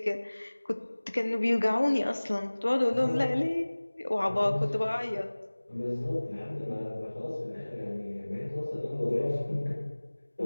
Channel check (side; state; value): both; inverted; correlation -1.00